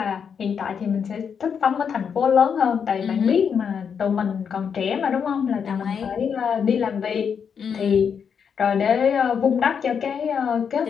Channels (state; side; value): quieter; right; 7.0 dB